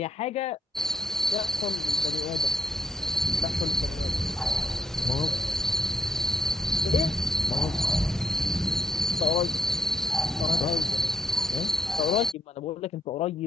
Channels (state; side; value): normal; both; correlation 0.74